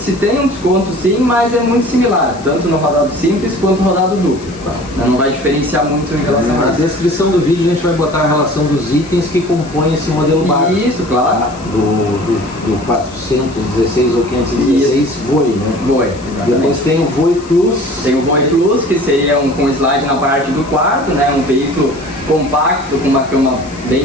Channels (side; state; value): left; noise; hiss, 21 dB below the sound